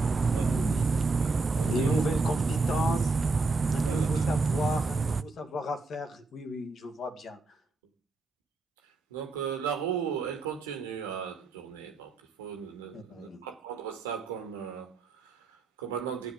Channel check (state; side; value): quieter; left; 3.6 dB